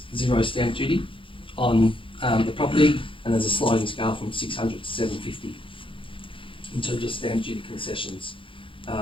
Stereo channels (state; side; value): late; right; 0.25 ms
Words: zero stamp duty on the property, and there's a sliding scale from 600 to 750 in terms of stamp duty concessions